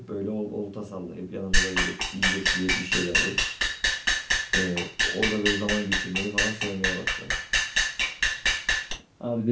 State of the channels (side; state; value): both; identical; correlation 1.00